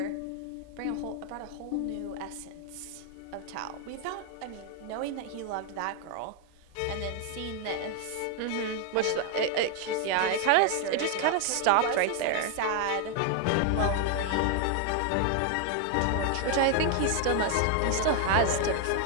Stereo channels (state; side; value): different; both; correlation 0.00